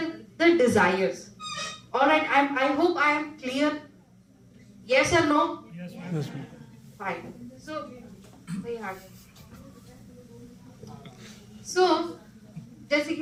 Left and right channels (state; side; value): identical; both; correlation 1.00